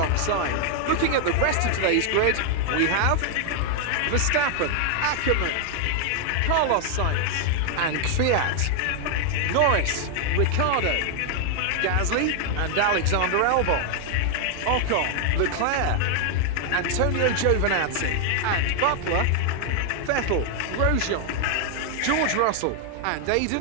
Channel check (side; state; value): both; different; correlation 0.00